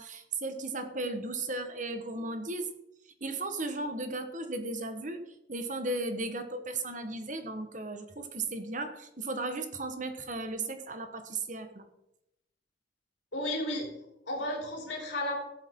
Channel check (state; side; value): normal; both; correlation 0.14